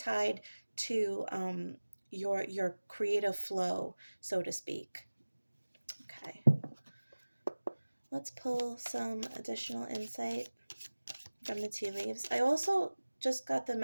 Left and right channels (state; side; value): inverted; both; correlation -1.00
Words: to your creative flow, so to speak. Okay. Let's pull some additional insight from the tea leaves. I also just got the